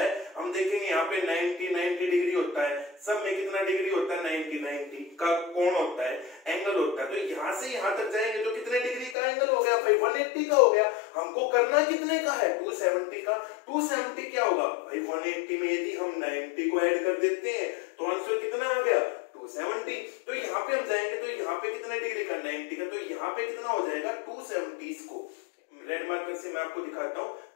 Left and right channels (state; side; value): drops out; right; at 9.2 s